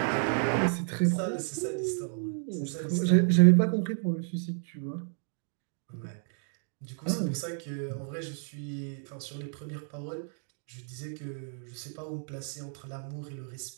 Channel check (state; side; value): silent; left; 57 dB below the other